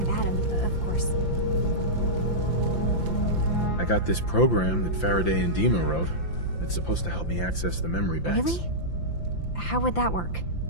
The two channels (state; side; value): late; right; 5.8 ms